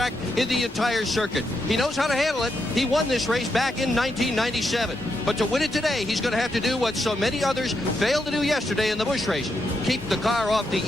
in the entire circuit. He knows how to handle it. He won this race back in 1997. But to win it today, he's going to have to do what so many others failed to do yesterday in the Busch race. Keep the car off the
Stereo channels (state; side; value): normal; both; correlation 0.82